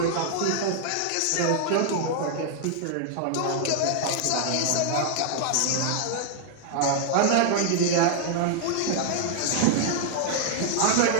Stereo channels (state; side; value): different; both; correlation 0.00